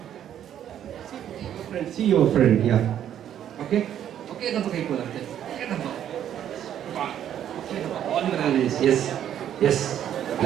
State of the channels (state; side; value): quieter; left; 10.3 dB